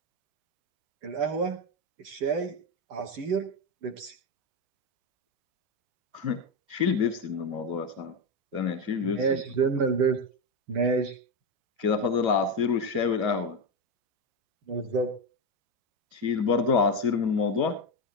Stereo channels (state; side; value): late; left; 8.9 ms